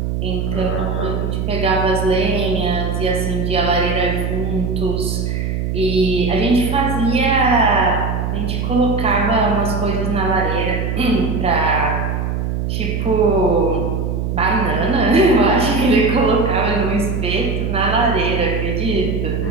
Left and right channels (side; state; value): right; noise; hum, 1 dB below the sound